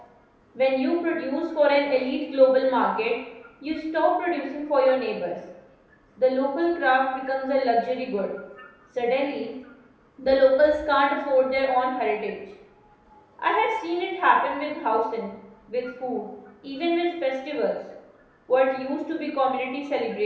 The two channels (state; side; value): identical; both; correlation 1.00